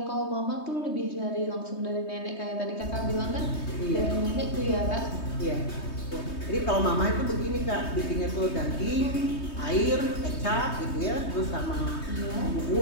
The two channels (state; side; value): late; right; 3.2 ms